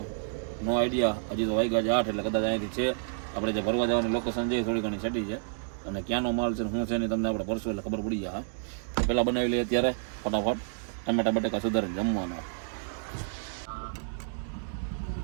નો આઈડિયા. હજી તો વાગ્યા છે 8, એટલે કદાચ અહીંથી છે આપણે જે ભરવા જવાની લોકેશન છે થોડી ઘણી સેટી છે. અને ક્યાંનો માલ છે શું છે ને તમને આપણે ભરશું એટલે ખબર પડી જાય. પહેલાં બનાવી લઈએ અત્યારે ફટાફટ ટમેટા બટેકા સુધારીને જમવાનો.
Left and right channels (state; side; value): silent; left; digital silence